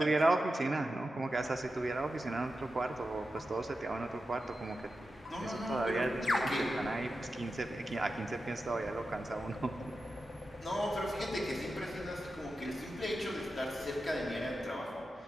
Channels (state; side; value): normal; both; correlation 0.91